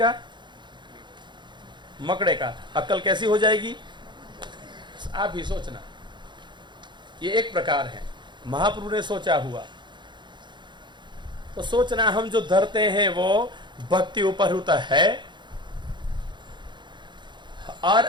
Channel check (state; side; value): late; left; 0.22 ms